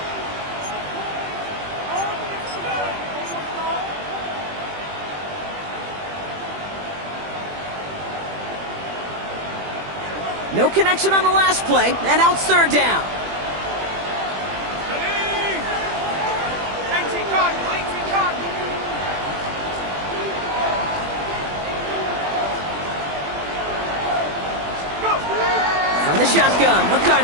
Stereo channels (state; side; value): late; left; 21 ms